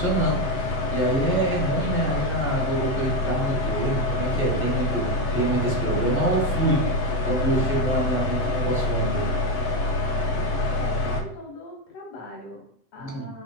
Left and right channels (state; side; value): late; right; 7.9 ms